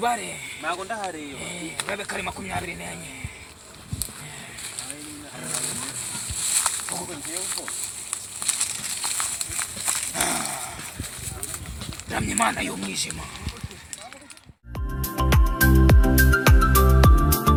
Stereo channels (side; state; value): both; identical; correlation 1.00